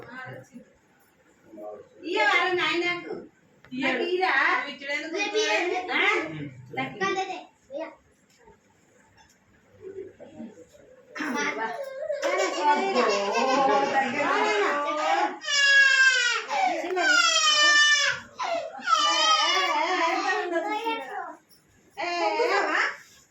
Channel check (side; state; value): both; identical; correlation 1.00